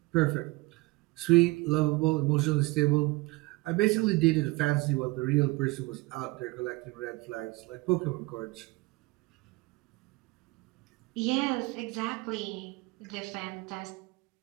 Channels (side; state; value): left; quieter; 22.7 dB